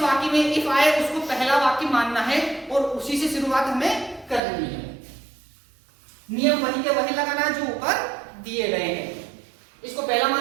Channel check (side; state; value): left; drops out; at 4.4 s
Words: में इफ आए उसको पहला वाक्य मानना है और उसी से शुरुआत हमें करनी है। नियम वही के वही लगाना जो ऊपर दिए गए हैं। इसको पहला